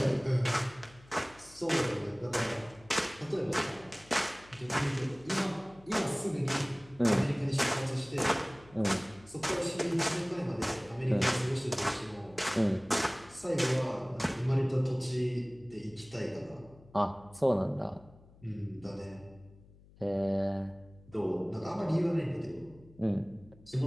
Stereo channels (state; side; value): noise; left; hum, 24 dB below the sound